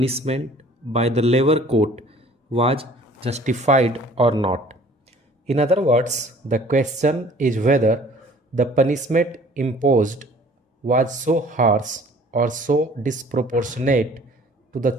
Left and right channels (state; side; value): normal; both; correlation 0.52